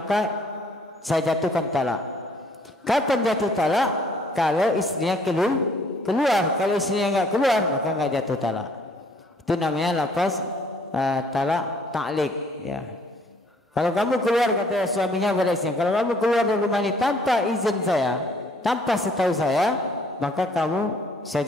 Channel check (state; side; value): normal; both; correlation 0.61